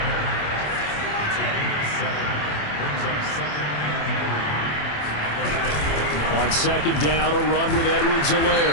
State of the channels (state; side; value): late; right; 27 ms